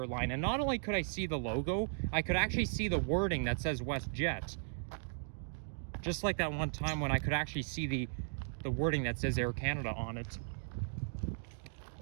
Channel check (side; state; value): left; silent; digital silence